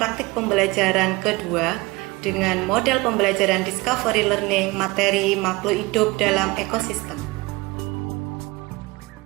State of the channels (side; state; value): left; quieter; 23.0 dB